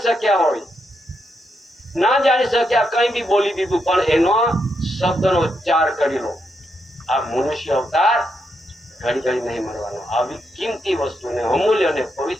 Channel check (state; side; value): normal; both; correlation 0.81